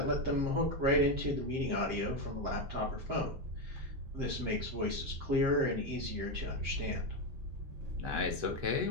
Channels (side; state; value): left; late; 7.7 ms